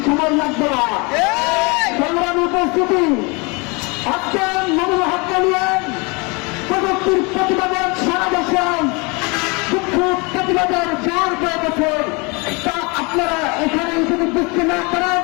সময় লাগবে না। সংগ্রামী উপস্থিতি, আজকে মামুনুল হককে নিয়ে প্রযুক্তির প্রতিবাদের সারা দেশে বিক্ষোভ প্রতিবাদের জোর হয়ে গেছে। তা আপনারা এখানে যদি বুঝতে না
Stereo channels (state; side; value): quieter; right; 28.9 dB